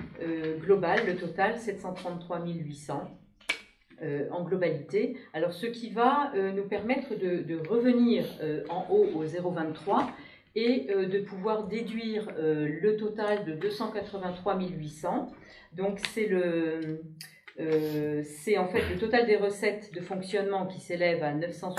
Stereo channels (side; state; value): both; identical; correlation 1.00